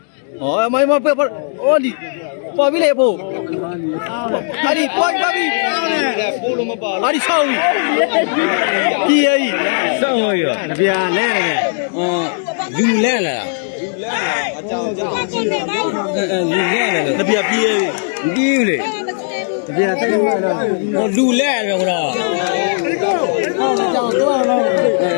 哦，妈妈不，哦你，包比来包，阿你包比， ပို့လို့မပါ 阿你操你，第二， စောင်းရနပြာလဲတယ်လူလဲလာ အကြောင်းကြောင်း လူလဲလာ 那边第二， ဒီလေ 那边再来了， ဟောလူလဲတယ်ခေါ်တော့ 讲多了，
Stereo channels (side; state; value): right; silent; 69 dB below the other